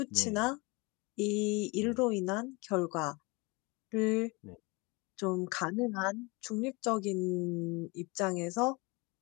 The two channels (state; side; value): quieter; right; 26.9 dB